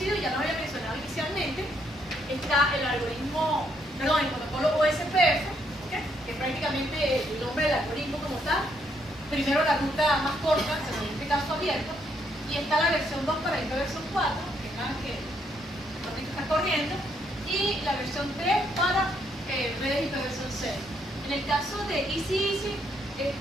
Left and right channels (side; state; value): both; normal; correlation 0.73